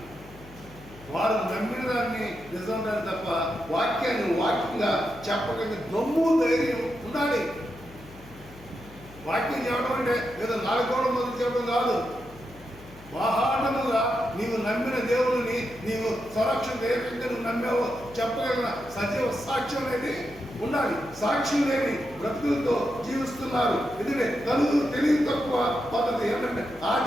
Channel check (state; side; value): noise; left; hum, 20 dB below the sound